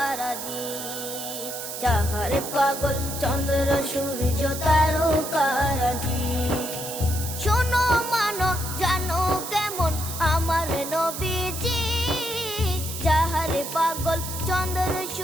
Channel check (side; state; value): right; noise; hiss, 7 dB below the sound